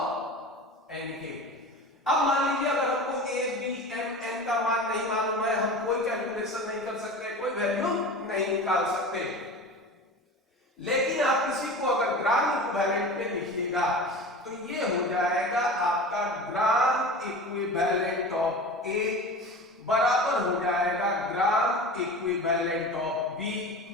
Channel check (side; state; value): both; normal; correlation 0.33